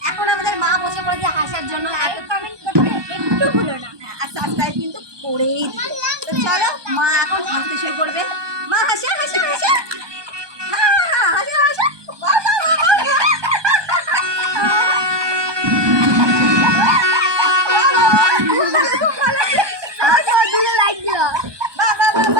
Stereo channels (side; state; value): left; late; 1.2 ms